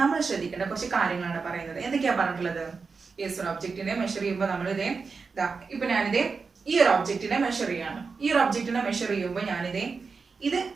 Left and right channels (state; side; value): quieter; left; 4.8 dB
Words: നമ്മൾ ശ്രദ്ധിക്കേണ്ട കുറച്ച് കാര്യങ്ങളാണ് പറയുന്നത്. എന്തൊക്കെയാ പറഞ്ഞിട്ടുള്ളത്? യെസ്, ഒരു ഒബ്ജക്റ്റിനെ മെഷർ ചെയ്യുമ്പോൾ നമ്മൾ ഇപ്പൊ ഞാനിതേ ഈ ഒരു ഒബ്ജക്റ്റിനെ മെഷർ ചെയ്യാണ്. ഈ ഒരു ഒബ്ജക്റ്റിനെ മെഷർ ചെയ്യുമ്പോൾ ഇത്